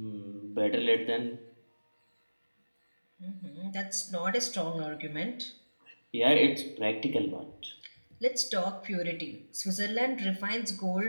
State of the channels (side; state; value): both; inverted; correlation -1.00